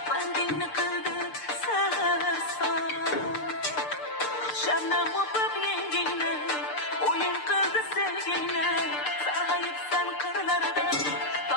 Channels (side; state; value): right; late; 6.7 ms